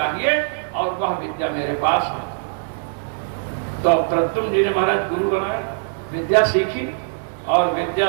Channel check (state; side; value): silent; left; digital silence